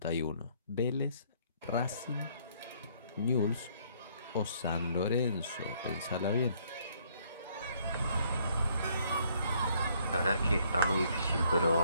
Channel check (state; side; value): inverted; both; correlation -0.66